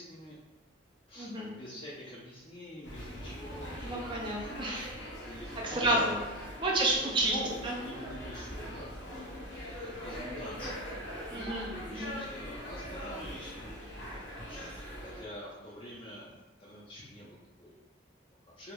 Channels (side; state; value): both; normal; correlation 0.16